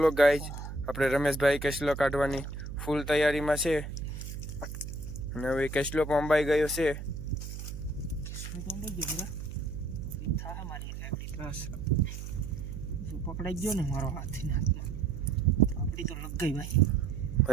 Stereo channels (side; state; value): right; noise; hum, 8 dB below the sound